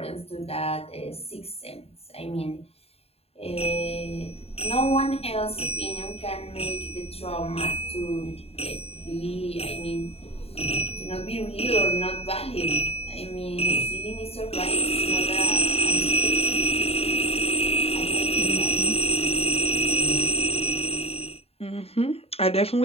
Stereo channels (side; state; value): right; late; 0.29 ms